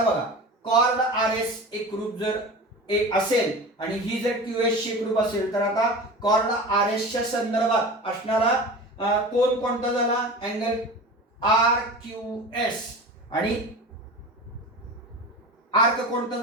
बघा, कॉर्ड RS एकरूप जर एक असेल आणि ही जर QS ची एकरूप असेल तर आता कॉर्ड RS च्या संदर्भात असणारा कोण कोणता झाला? अँगल RQS आणि आर्क कोणता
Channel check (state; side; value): normal; both; correlation 0.32